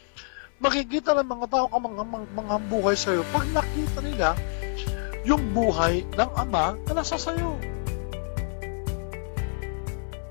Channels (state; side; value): silent; right; 60 dB below the other